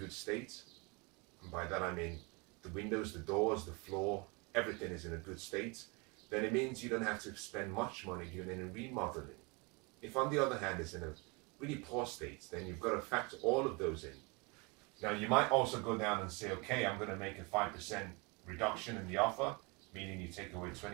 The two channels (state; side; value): quieter; left; 29.3 dB